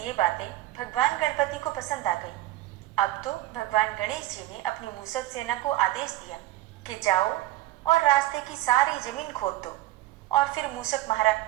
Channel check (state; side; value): quieter; left; 16.0 dB